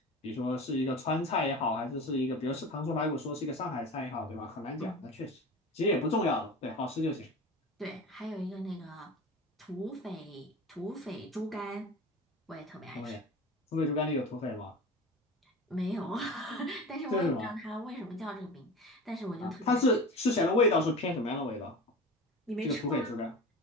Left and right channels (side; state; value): both; normal; correlation 0.33